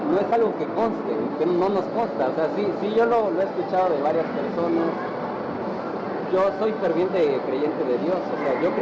no es algo que conste, que no nos consta. O sea, sí yo lo he escuchado de varias personas. Yo soy ferviente creyente de Dios, o sea, yo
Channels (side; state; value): both; identical; correlation 1.00